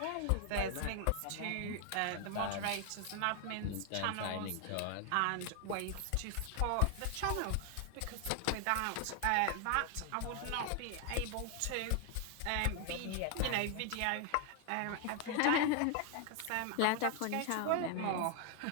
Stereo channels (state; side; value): different; both; correlation 0.00